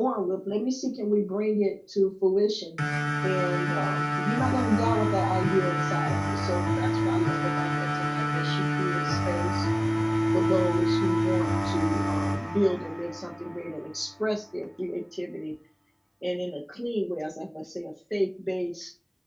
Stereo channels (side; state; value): both; identical; correlation 1.00